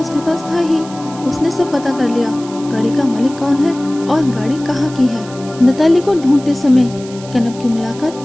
पास था ही। उसने सब पता कर लिया, गाड़ी का मालिक कौन है और गाड़ी कहाँ की है। नताली को ढूंढते समय कनव की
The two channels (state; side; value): noise; right; hiss, 18 dB below the sound